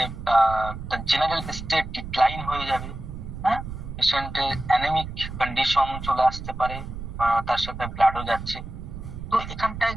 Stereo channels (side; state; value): right; noise; rumble, 9 dB below the sound